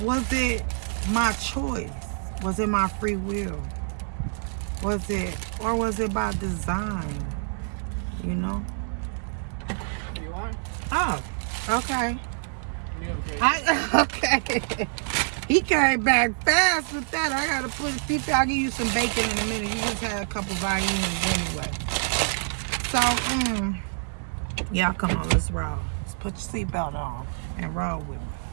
it my choice? Was it my free will? Was it by design? You want? Oh, okay. Yeah, Okay. He came back fast with that. I gotta put Fifi, I'll give you some bacon in a minute. You just had a couple violins anyway. So, yeah, come on, let's roll. Let's put your seatbelt on and roll with me.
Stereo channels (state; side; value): silent; left; digital silence